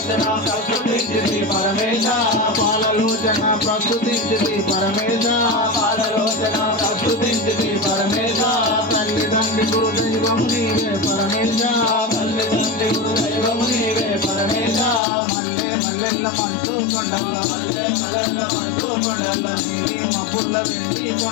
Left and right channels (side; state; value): right; drops out; at 15.0 s